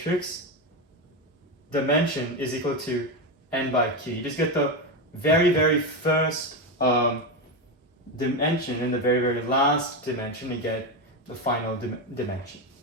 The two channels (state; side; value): normal; both; correlation 0.13